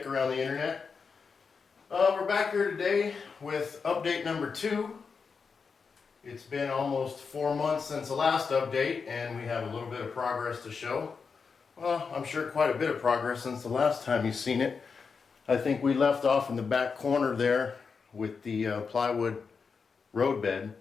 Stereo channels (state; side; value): quieter; right; 5.4 dB